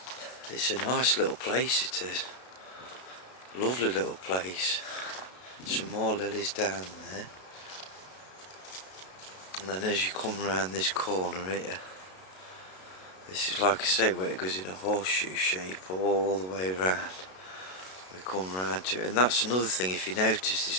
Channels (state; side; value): late; right; 32 ms